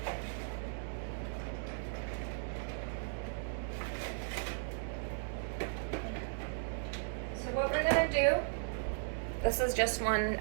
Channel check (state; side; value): silent; left; 53 dB below the other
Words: So what we're going to do, this is just one,